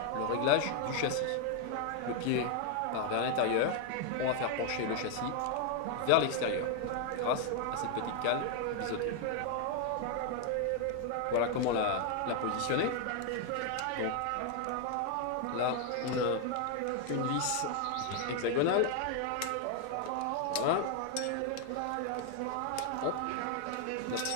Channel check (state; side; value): different; both; correlation 0.00